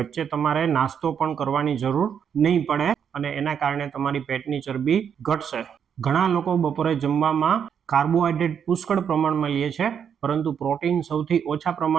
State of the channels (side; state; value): left; quieter; 7.8 dB